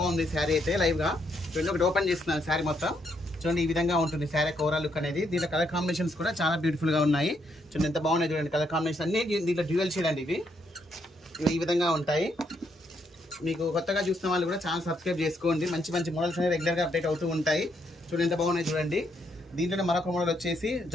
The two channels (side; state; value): both; normal; correlation 0.75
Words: శారీ అయితే లైవ్గా. చూడండి, ఒకటి ఓపెన్ చేస్తున్నాను శారీ మొత్తం. చూడండి, ఈ విధంగా ఉంటుంది శారీ ఓవరాల్ లుక్ అనేది. దీంట్లో కలర్ కాంబినేషన్స్ కూడా చాలా బ్యూటిఫుల్గా ఉన్నాయి. చూడండి ఎంత బాగున్నాయి. చూడండి కలర్ కాంబినేషన్ అన్ని దీంట్లో డ్యూయల్ షేడ్ అండి. ఇవి ఈ విధంగా ఉంటాయి. మీకు కొత్తగా చూసిన వాళ్ళు కూడా ఛానల్ సబ్స్క్రైబ్ చేసుకోండి. మంచి మంచి మోడల్స్ అనేవి రెగ్యులర్గా అప్డేట్ అవుతూ ఉంటాయి. చూడండి ఎంత బాగున్నాయి. చూడండి, దీంట్లో మరొక మోడల్ వచ్చేసి